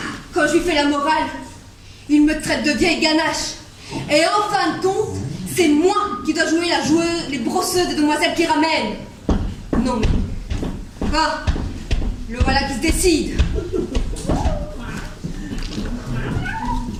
Quand je lui fais la morale, il me traite de vieille ganache. Et en fin de compte, c'est moi qui dois jouer la joueuse, les brosseuses des demoiselles qui ramènent. Non mais... Ah, le voilà qui se décide.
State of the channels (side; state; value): both; identical; correlation 1.00